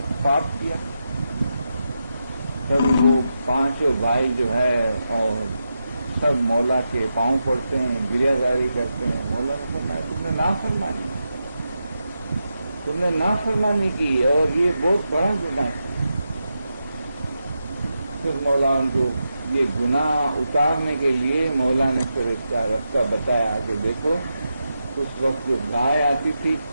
پاپ کیا. تب وہ پانچوں بھائی جو ہے اور سب مولا کے پاؤں پڑتے ہیں، گریہ زاری کرتے ہیں. مولا نے فرمایا تم نے نافرمانی کی اور یہ بہت بڑا گناہ ہے. پھر مولا ان کو یہ گناہ اتارنے کے لیے مولا نے پھر اس کا راستہ بتایا کہ دیکھو اس وقت جو گائے آتی تھی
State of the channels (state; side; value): inverted; both; correlation -0.87